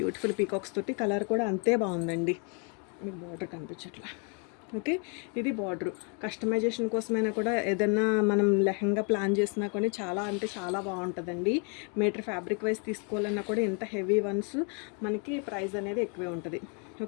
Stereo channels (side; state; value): right; quieter; 37.2 dB